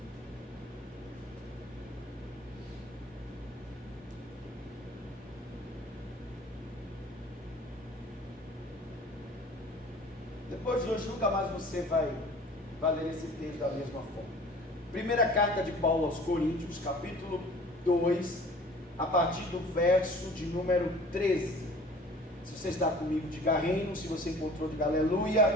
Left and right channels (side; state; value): both; normal; correlation 0.47